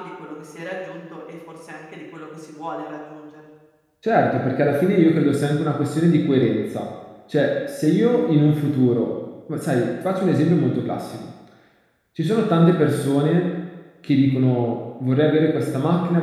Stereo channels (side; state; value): both; identical; correlation 1.00